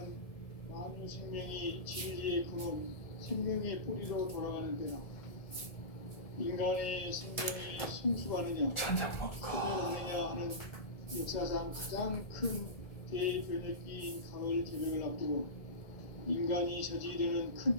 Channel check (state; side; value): late; right; 1.7 ms